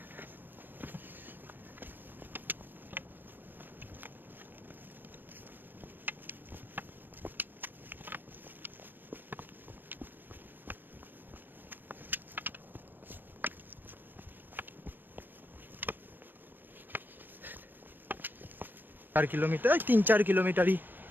চার কিলোমিটার, 3-4 কিলোমিটারই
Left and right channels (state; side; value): late; left; 0.093 ms